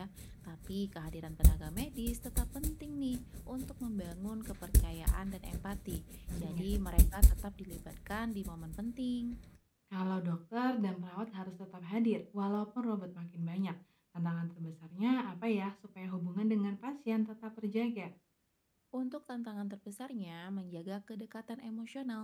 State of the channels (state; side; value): identical; both; correlation 1.00